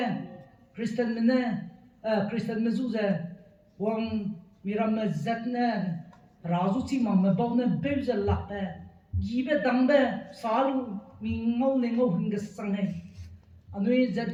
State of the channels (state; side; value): identical; both; correlation 1.00